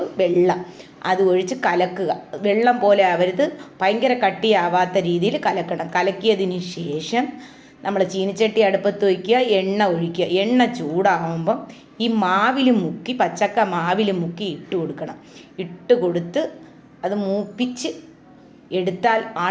വെള്ളം അത് ഒഴിച്ച് കലക്കുക. വെള്ളം പോലെ ആവരുത്, ഭയങ്കര കട്ടിയാവാത്ത രീതിയിൽ കലക്കണം. കലക്കിയതിന് ശേഷം നമ്മൾ ചീനിച്ചട്ടി അടുപ്പത്ത് വയ്ക്കുക, എണ്ണ ഒഴിക്കുക. എണ്ണ ചൂടാകുമ്പം ഈ മാവിൽ മുക്കി, പച്ചക്ക മാവിൽ മുക്കി ഇട്ട് കൊടുക്കണം. ഇട്ട് കൊടുത്ത് അത് മൂപ്പിച്ച് എടുത്താൽ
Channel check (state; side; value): identical; both; correlation 1.00